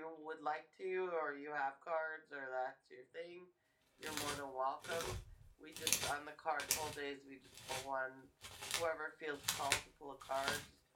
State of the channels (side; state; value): both; identical; correlation 1.00